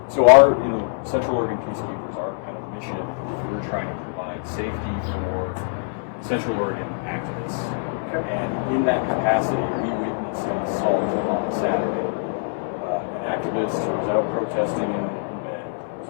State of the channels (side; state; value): right; silent; 63 dB below the other